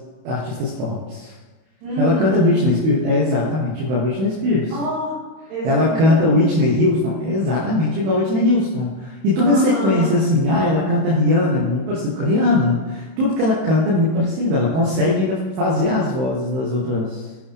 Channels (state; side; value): late; left; 31 ms